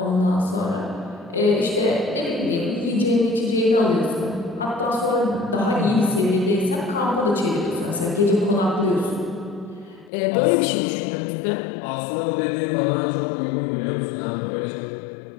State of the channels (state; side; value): drops out; right; at 10.1 s